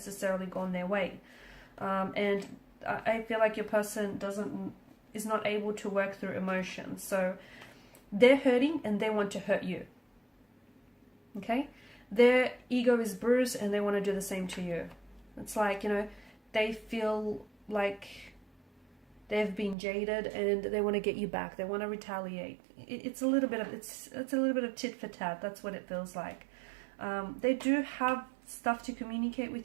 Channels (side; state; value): left; drops out; at 19.8 s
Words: gone their way. And I feel like your person is not able to work through emotions. So they're hurting and they want to hurt you, okay? Their ego is bruised and they want to do the same to you. It's like, you know, they feel like they've been jaded and they want to get you back. They want to retaliate. It's a little bit of it's a little bit of tit for tat. That's what it feels like. They do have stuff to communicate